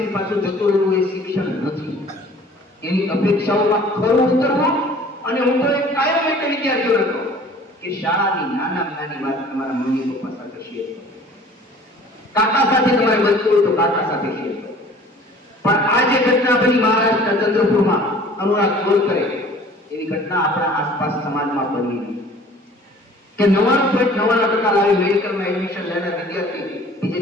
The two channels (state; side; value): normal; both; correlation 0.49